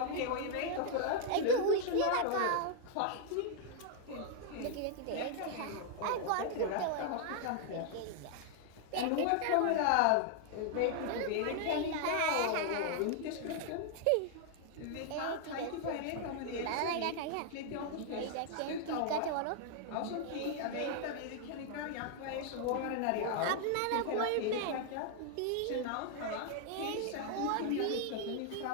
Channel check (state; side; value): different; both; correlation -0.01